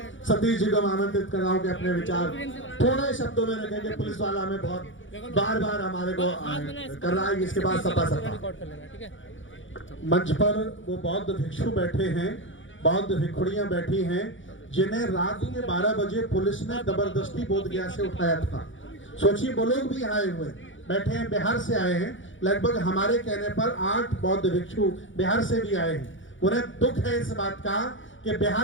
सतीश जी को मैं आमंत्रित कर रहा हूँ कि अपने विचार थोड़े शब्दों में रखेंगे। पुलिस वाला हमें बहुत बार हमारे को कर रहा है, इसके बाद सपा मंच पर वो बौद्ध भिक्षु बैठे हैं, बौद्ध भिक्षुड़ियां बैठी हैं, जिन्हें रात के 12 बजे पुलिस ने जबरदस्ती बोधगया से उठाया था। सोचिए, वो लोग भी आए हुए बैठे हैं, बिहार से आए हैं। लगभग हमारे कहने पर 8 बौद्ध भिक्षु बिहार से भी आए हैं। उन्हें दुख है इस बात का कि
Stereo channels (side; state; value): right; late; 0.56 ms